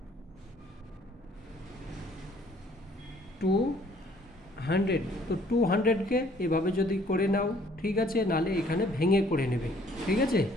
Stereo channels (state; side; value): normal; both; correlation 0.60